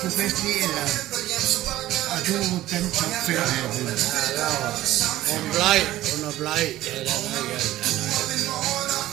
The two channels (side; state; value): left; quieter; 15.1 dB